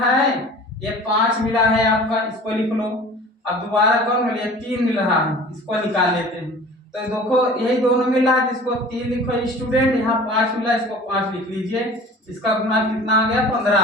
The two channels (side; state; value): both; normal; correlation 0.43